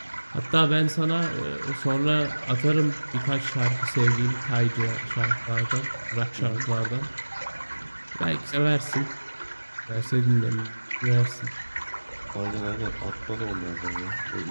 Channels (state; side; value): inverted; both; correlation -1.00